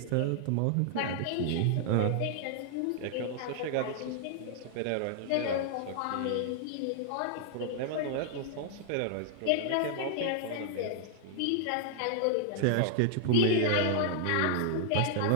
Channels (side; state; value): both; different; correlation 0.00